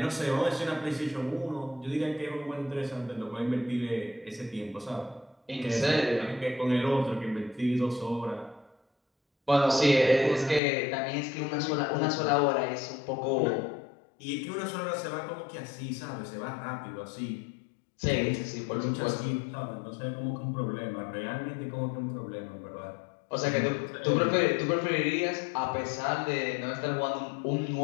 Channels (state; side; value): drops out; right; at 10.6 s